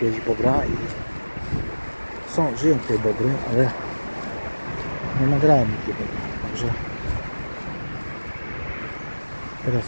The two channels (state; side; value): inverted; both; correlation -1.00